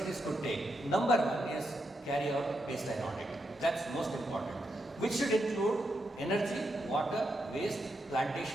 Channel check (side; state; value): both; normal; correlation 0.83